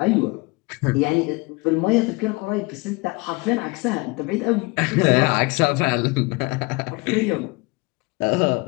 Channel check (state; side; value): quieter; right; 26.3 dB